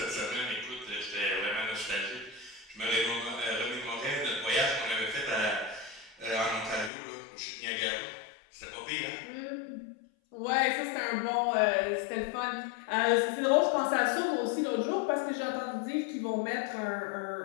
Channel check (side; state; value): right; drops out; at 6.9 s